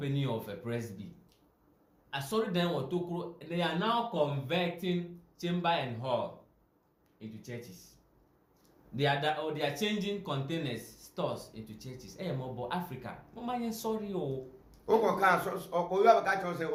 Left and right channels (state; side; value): identical; both; correlation 1.00